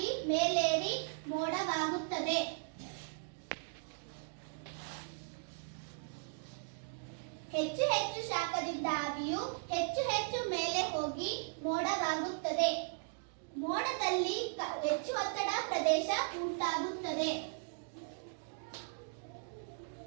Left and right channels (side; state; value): left; silent; digital silence